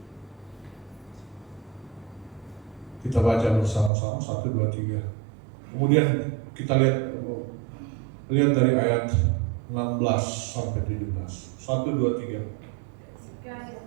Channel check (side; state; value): left; drops out; at 3.9 s